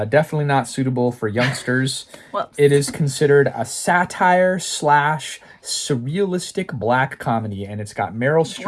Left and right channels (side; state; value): both; identical; correlation 1.00